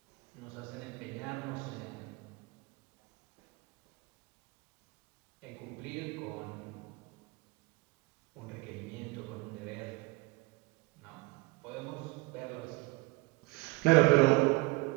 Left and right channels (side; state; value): left; quieter; 23.7 dB